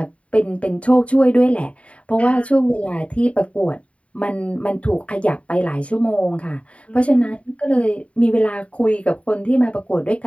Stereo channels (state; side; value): late; right; 0.064 ms